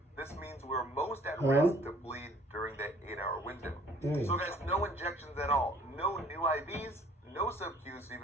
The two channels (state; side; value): normal; both; correlation 0.56